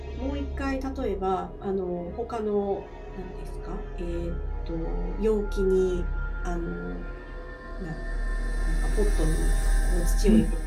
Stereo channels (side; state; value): both; identical; correlation 1.00